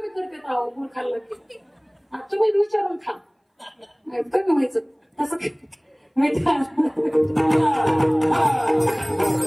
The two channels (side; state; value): both; identical; correlation 1.00